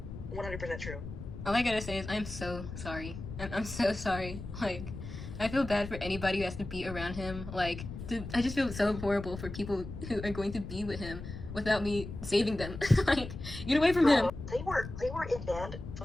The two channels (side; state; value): left; noise; rumble, 10 dB below the sound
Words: 100% true. All I gotta say is I'm so sorry. I'm so sorry. Like, I feel bad for anybody who has to be around him. Like, I just feel so horrible for people who are going to be with him without me saving them. Like, get away from him. They were in band for